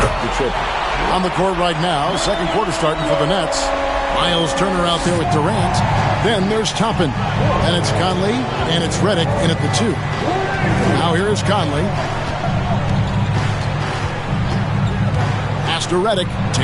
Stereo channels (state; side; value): identical; both; correlation 1.00